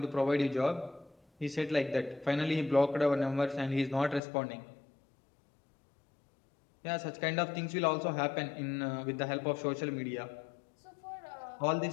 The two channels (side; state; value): right; drops out; at 4.2 s